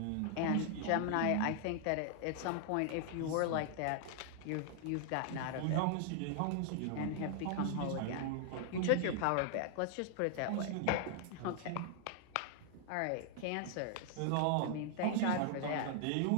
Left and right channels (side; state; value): both; different; correlation 0.00